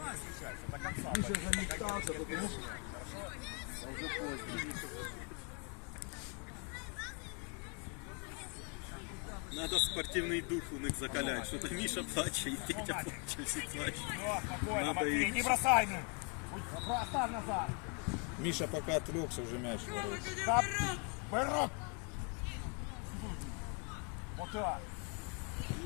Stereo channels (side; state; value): right; quieter; 36.0 dB